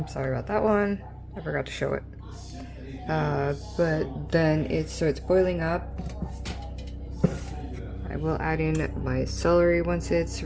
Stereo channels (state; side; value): identical; both; correlation 1.00